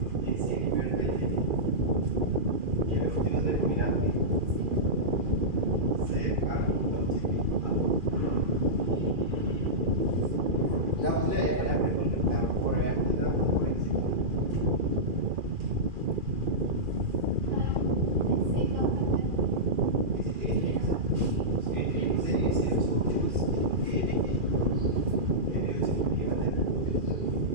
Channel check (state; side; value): late; left; 2.4 ms